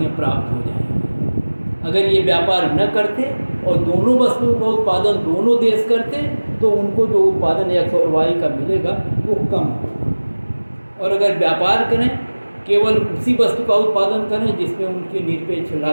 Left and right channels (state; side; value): inverted; both; correlation -1.00